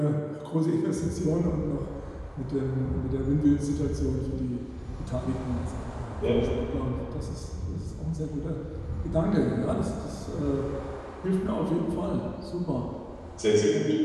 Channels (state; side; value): identical; both; correlation 1.00